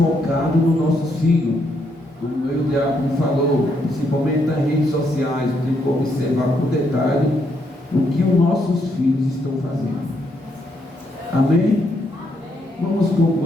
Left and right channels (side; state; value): both; normal; correlation 0.76